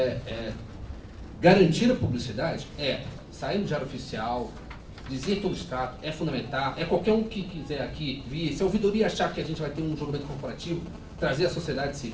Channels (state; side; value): identical; both; correlation 1.00